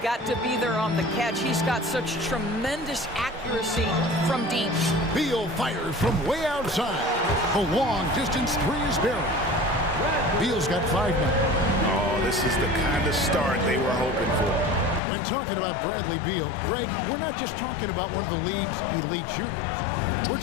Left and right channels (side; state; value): right; drops out; at 15.0 s